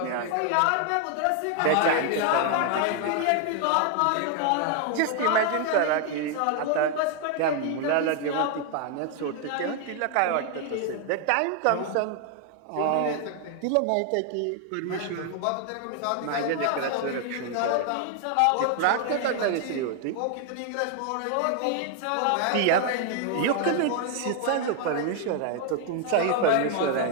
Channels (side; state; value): both; different; correlation 0.00